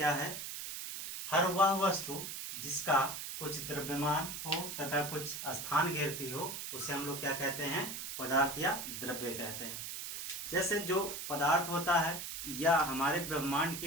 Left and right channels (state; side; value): noise; right; hiss, 6 dB below the sound